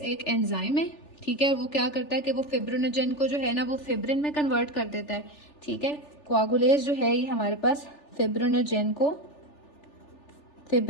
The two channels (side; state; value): right; late; 3.4 ms